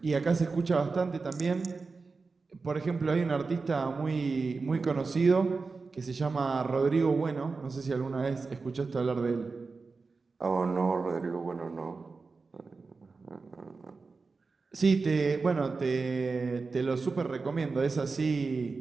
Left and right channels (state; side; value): quieter; left; 4.2 dB